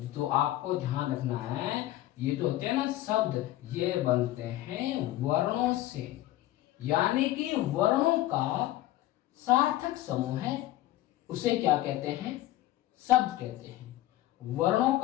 तो आपको ध्यान रखना है, ये जो होते हैं ना शब्द, ये बनते हैं वर्णों से। यानी कि वर्णों का सार्थक समूह है, उसे क्या कहते हैं? शब्द कहते हैं। वर्णों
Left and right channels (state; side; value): quieter; right; 15.2 dB